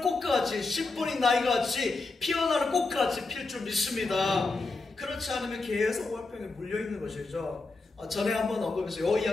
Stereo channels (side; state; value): right; quieter; 3.6 dB